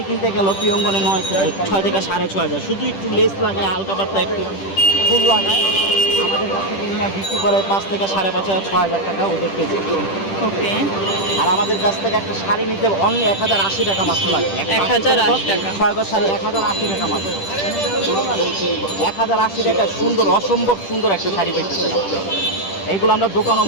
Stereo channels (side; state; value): right; late; 10 ms